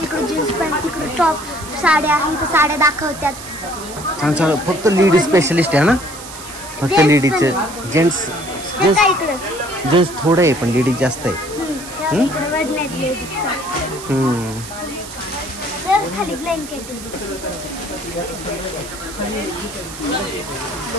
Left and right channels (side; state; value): right; noise; hiss, 13 dB below the sound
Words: इकडे जीन्स पॅन्ट तिकडे टॉप साड्या आहे तर साड्या दाखवतात छान छान फक्त लेडीज स्पेशलिस्ट आहे ना फक्त लेडीजचे जेंट्स जेंट्स थोडं आहे पण लेडीज जास्त आहे खाली ब्लँकेट